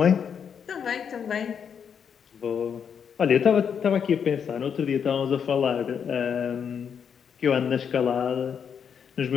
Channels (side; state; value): right; quieter; 7.3 dB